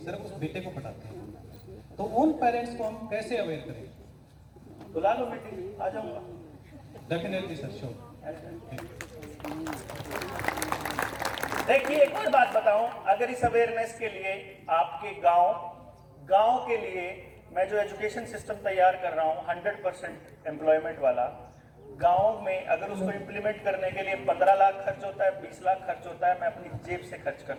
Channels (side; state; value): both; identical; correlation 1.00